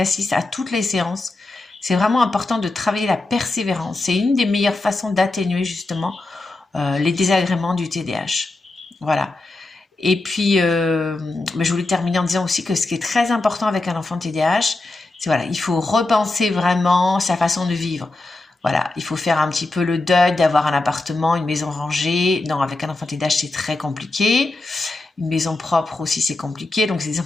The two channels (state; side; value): quieter; right; 3.0 dB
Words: à toutes les séances. C'est vraiment important de travailler la persévérance. C'est une des meilleures façons d'atténuer justement les désagréments du TDAH. Voilà. Et puis, je voulais terminer en disant aussi que ce qui est très important avec un enfant TDAH, c'est il faut repenser vraiment sa façon de vivre. Voilà, il faut faire un petit peu le deuil d'avoir un appartement, une maison rangée. Non, avec un enfant TDAH, c'est très compliqué. Une maison propre aussi, c'est compliqué. Donc, c'est des